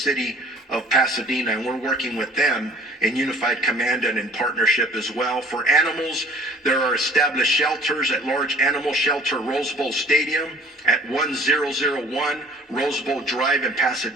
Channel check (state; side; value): normal; both; correlation 0.52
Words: of Pasadena, and we're working with them in Unified Command and in partnership as well. For animals, there are established shelters at Large Animal Shelter Rose Bowl Stadium at 1001 Rose Bowl Drive in